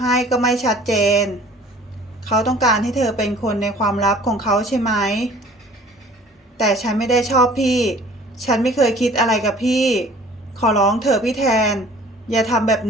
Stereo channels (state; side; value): normal; both; correlation 0.50